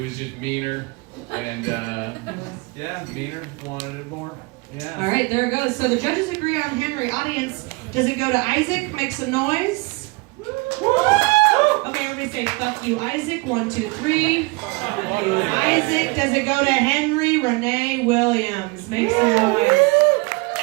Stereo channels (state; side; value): quieter; left; 26.8 dB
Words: was just meaner. And, meaner. Wanted it more. Yeah. All right, there it goes. So the judges agree on Henry. Audience, does it go to Isaac? Make some noise. Okay, everybody say, fuck you, Isaac. 1, 2, 3. Fuck you, Isaac. Does it go to Henry Renee Williams? Make some noise.